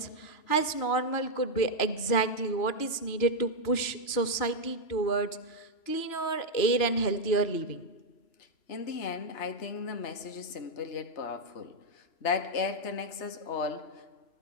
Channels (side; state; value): right; late; 3.0 ms